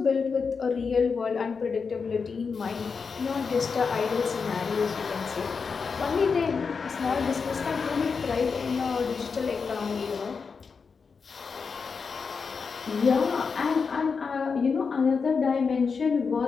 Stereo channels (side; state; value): right; quieter; 5.3 dB